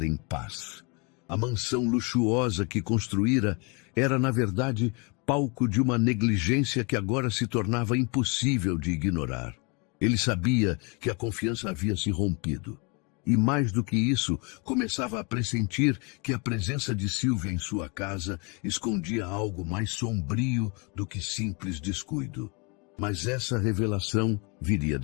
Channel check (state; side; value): quieter; right; 31.7 dB